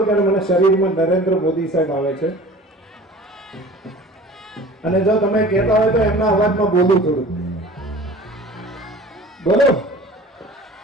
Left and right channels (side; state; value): both; normal; correlation 0.43